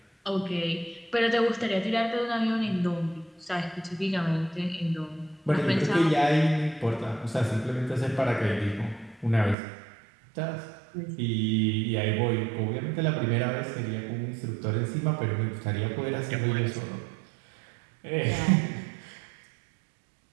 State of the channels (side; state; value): left; drops out; at 9.6 s